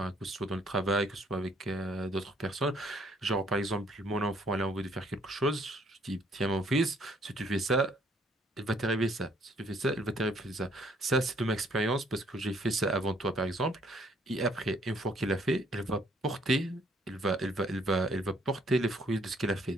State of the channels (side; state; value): both; normal; correlation 0.65